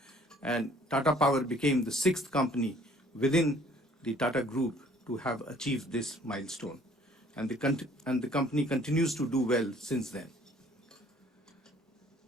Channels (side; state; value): both; normal; correlation 0.57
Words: And Tata Power became the 6th company within the Tata Group to have achieved this milestone. And the company continues to do well since then.